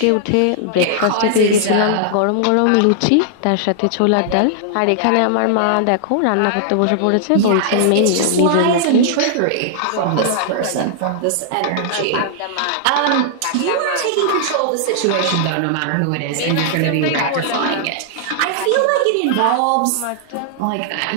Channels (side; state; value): both; different; correlation -0.01